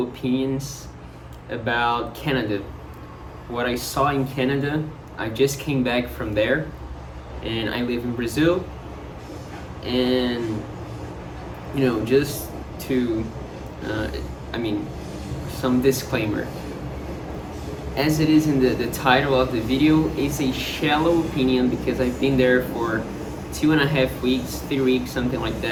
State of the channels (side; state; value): both; identical; correlation 1.00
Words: opinions about Canada. What I saw in Canada. I just came back from there and I live in Brazil. And just to, I mean, some disclaimer. As it is in the title of the video, it's a shallow opinion because I've been there for 2.5 weeks, 3 weeks, something like